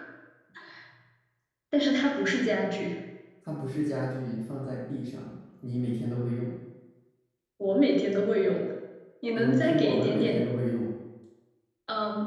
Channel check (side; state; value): both; identical; correlation 1.00